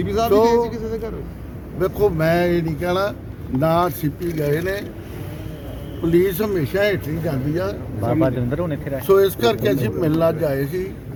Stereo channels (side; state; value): both; identical; correlation 1.00